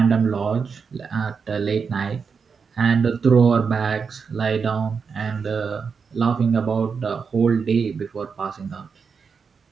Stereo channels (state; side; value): quieter; left; 5.7 dB